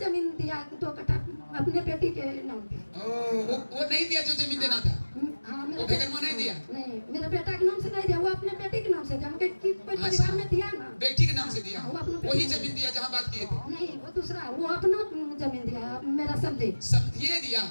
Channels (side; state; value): both; inverted; correlation -1.00